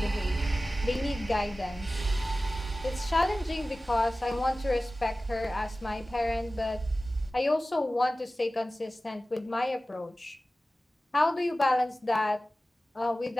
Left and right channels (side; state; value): both; normal; correlation 0.96